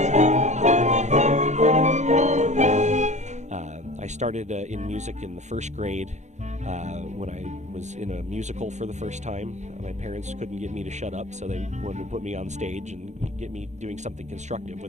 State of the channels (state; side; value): late; left; 0.34 ms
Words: started in music in the first grade when I was in a musical for the first time. My parents couldn't get me to shut up, so they wanted to put me on stage and get me doing something constructive